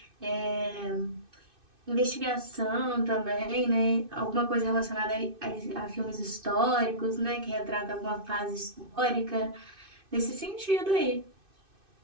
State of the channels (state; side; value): late; left; 2.6 ms